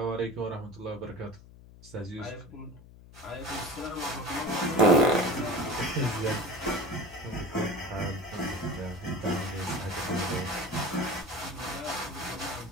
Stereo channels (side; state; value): left; noise; hum, 20 dB below the sound